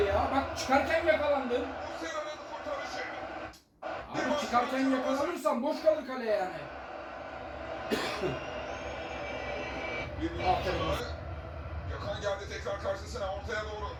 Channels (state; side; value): identical; both; correlation 1.00